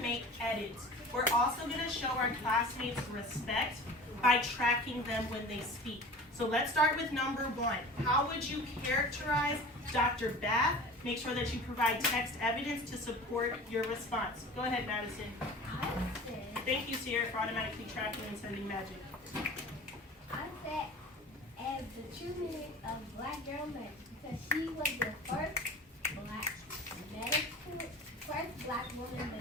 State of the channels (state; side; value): normal; both; correlation 0.39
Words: edits. We're also going to show our classmates respect by tracking them when they speak. So let's start with number 1. How would you characterize Dr. Bath? Make sure that you provide text evidence to support your response. Go ahead, Madison. Thank you, Sierra, for automatically tracking and sending magic. I said as the true meaning of black girl magic because she was the first black woman